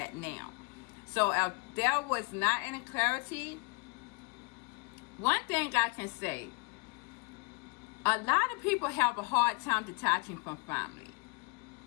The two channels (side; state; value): right; quieter; 30.3 dB